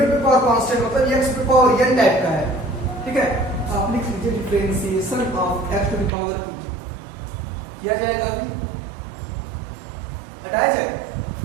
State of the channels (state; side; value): drops out; left; at 6.1 s